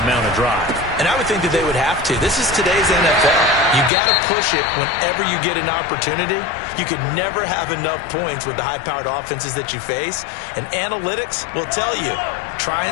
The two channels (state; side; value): drops out; right; at 3.9 s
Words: mount a drive. And I would think that they would have to. This is today's NFL. You got to push it whenever you get an opportunity. You could never have enough points with the high-powered offenses that you face. And analytics will tell you, try